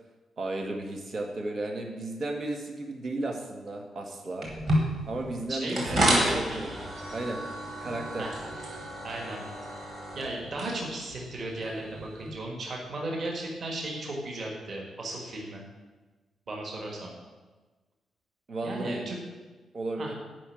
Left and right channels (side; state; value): both; normal; correlation 0.82